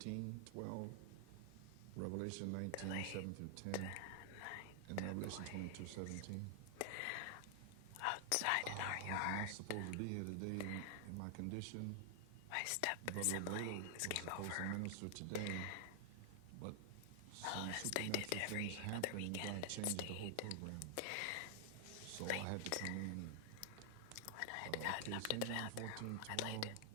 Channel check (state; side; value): different; both; correlation 0.00